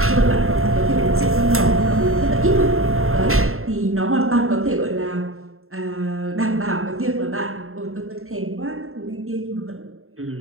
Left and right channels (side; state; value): left; late; 0.62 ms